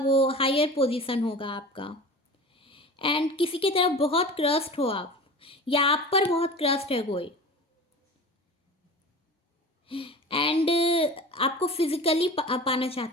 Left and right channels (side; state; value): both; normal; correlation 0.35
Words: हायर पोजीशन होगा आपका। एंड किसी की तरफ बहुत क्रस्ट हो आप, या आप पर बहुत क्रस्ट है कोई। एंड आपको फिजिकली पाना